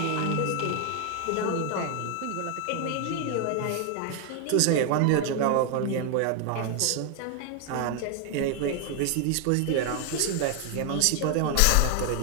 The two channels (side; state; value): both; different; correlation 0.00